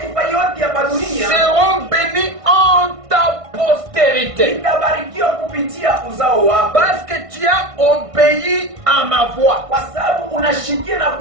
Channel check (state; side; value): late; left; 1.5 ms